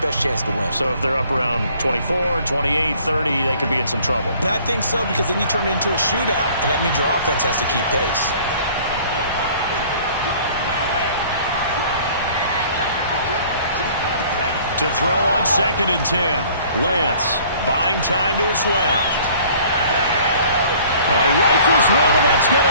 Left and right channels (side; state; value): both; inverted; correlation -0.53